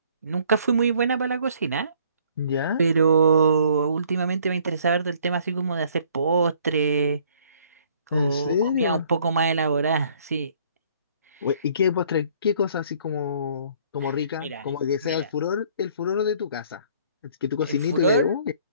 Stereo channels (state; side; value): inverted; both; correlation -0.60